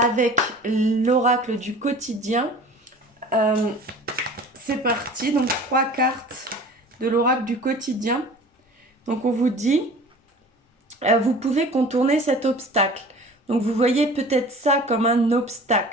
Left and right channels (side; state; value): both; normal; correlation 0.43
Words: l'oracle du quotidien. C'est parti, donc 3 cartes de l'oracle du quotidien. Donc on vous dit, vous pouvez contourner cet obstacle. Donc vous voyez peut-être ça comme un